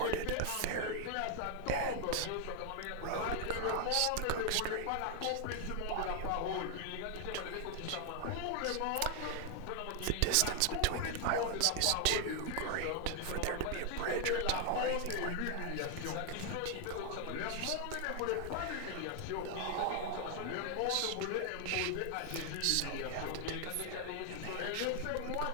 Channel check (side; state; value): both; different; correlation 0.00